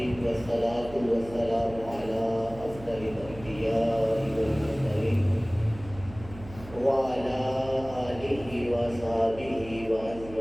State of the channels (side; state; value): right; noise; hum, 16 dB below the sound